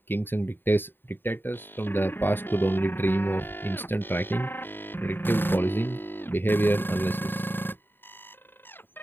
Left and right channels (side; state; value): right; late; 0.097 ms